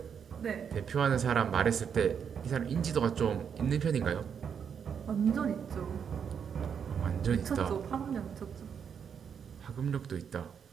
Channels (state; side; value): quieter; left; 7.4 dB